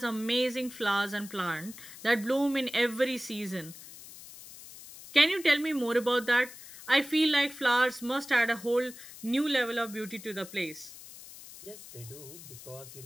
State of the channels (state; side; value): noise; left; hiss, 16 dB below the sound